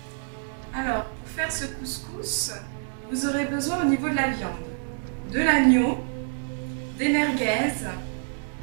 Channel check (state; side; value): silent; left; digital silence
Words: Alors pour faire ce couscous, vous aurez besoin au niveau de la viande, de l'agneau, des merguez,